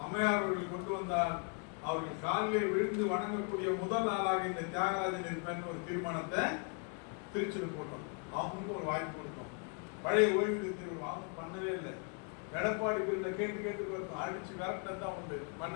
அம்மையார் அவர்கள் கொண்டு வந்தால் அவர்கள் காலிலே விழுந்து வணங்கக்கூடிய முதல் நாளாக இந்த தியாகராஜன் இருப்பேன் ஒரு தீர்மானத்தை திருச்சியில் போட்டோம். அவங்களுக்கு ஒரு வாய்ப்பு கொடுத்தோம். பழைய ஓய்வூதியத்தில் அவங்க பண்ணவே இல்லை. எடப்பாடி பிரிவுல கேட்டு பார்த்தோம், அடிச்சு விரட்டம் தான் உண்டு,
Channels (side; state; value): right; quieter; 36.4 dB